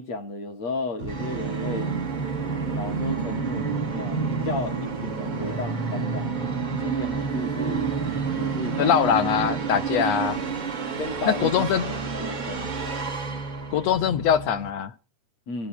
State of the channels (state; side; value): late; right; 8.3 ms